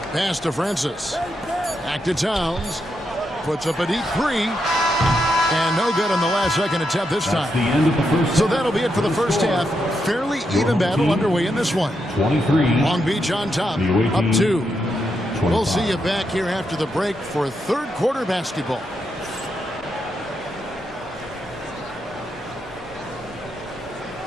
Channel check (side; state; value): both; normal; correlation 0.82